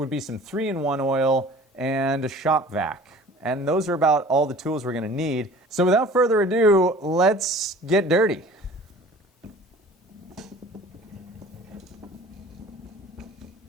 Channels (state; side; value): normal; both; correlation 0.46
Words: be some 3-in-1 oil and a shop vac. And those are about all the tools we're going to need. So without further ado, let's get dirty.